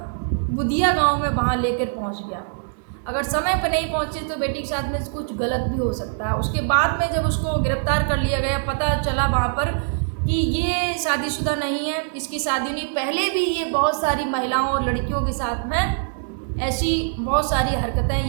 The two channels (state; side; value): silent; left; digital silence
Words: बुधिया गांव में वहाँ लेकर पहुँच गया। अगर समय पर नहीं पहुँचे तो बेटी के साथ में कुछ गलत भी हो सकता है। उसके बाद में जब उसको गिरफ्तार कर लिया गया, पता चला वहाँ पर कि ये शादीशुदा नहीं है, इसकी शादी नहीं, पहले भी ये बहुत सारी महिलाओं और लड़कियों के साथ में ऐसी बहुत सारी हरकतें